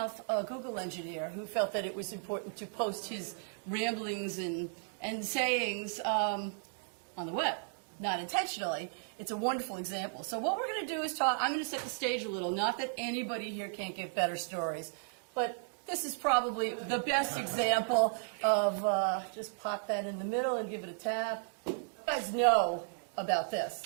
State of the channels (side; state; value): left; silent; digital silence